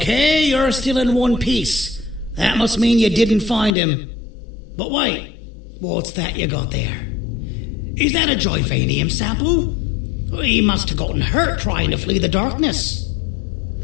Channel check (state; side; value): drops out; right; at 3.7 s